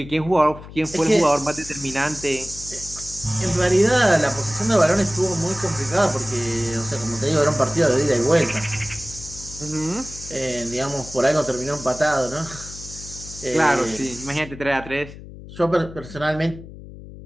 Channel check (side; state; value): left; noise; hum, 15 dB below the sound